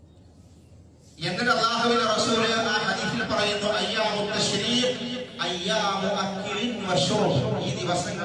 എന്നിട്ട് അല്ലാഹുവിന്റെ റസൂൽ ആ ഹദീസിൽ പറയുന്നു, അയ്യാമു തശ്രീഖ് അയ്യാമു അക്ലിൻ വശുർബ്. ഈ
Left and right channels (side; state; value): both; identical; correlation 1.00